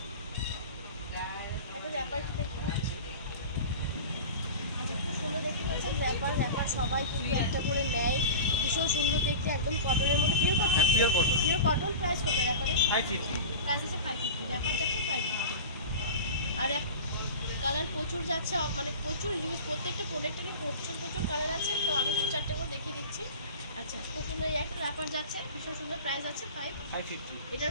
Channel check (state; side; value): inverted; both; correlation -0.31